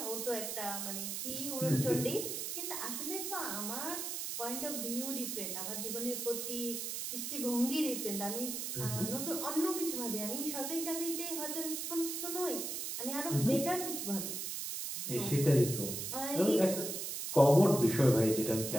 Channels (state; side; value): noise; right; hiss, 4 dB below the sound